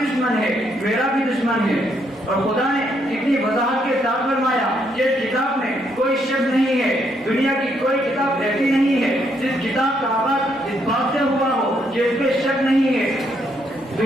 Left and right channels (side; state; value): both; normal; correlation 0.74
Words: دشمن ہے، میرا بھی دشمن ہے. اور خدا نے کتنی وضاحت کے ساتھ فرمایا کہ اس کتاب میں کوئی شک نہیں ہے، دنیا کی کوئی کتاب ایسی نہیں ہے جس کتاب کا آغاز اس بات سے ہوا ہو کہ اس پہ شک نہیں ہے.